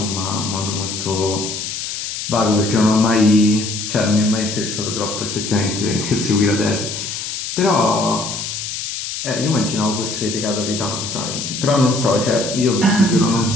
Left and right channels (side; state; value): left; noise; hiss, 5 dB below the sound